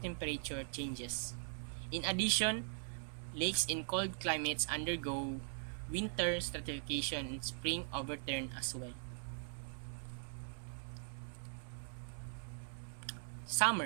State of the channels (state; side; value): silent; left; 50 dB below the other